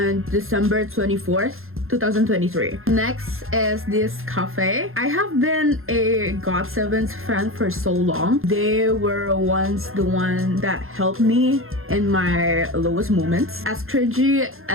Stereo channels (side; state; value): left; late; 0.61 ms